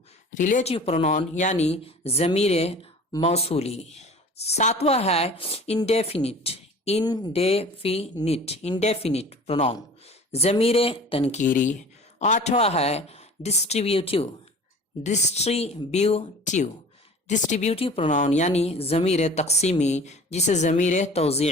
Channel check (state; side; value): normal; both; correlation 0.43